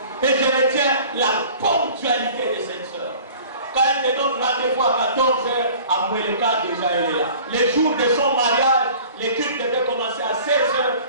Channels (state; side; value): inverted; both; correlation -0.46